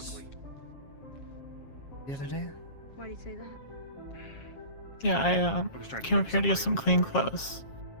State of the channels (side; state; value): right; late; 7.4 ms